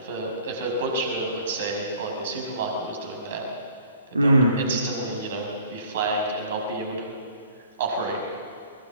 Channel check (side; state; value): both; inverted; correlation -0.51